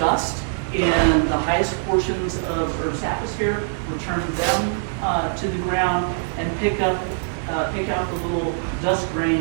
in the highest portions of Earth's atmosphere, return them to the ground, and pick out the little dust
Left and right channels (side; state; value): left; silent; digital silence